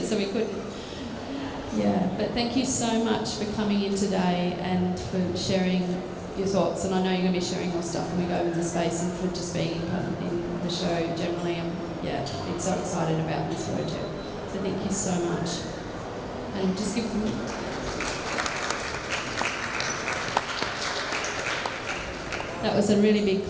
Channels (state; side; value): identical; both; correlation 1.00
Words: so we couldn't. Yeah, but thank you so much for coming in today and for sharing your thoughts. And I know you're going to be sharing more stuff when we go in the space, and for just being in the show generally. Yeah, I'm so excited about this project. So thank you so much. And just give them. That was a really big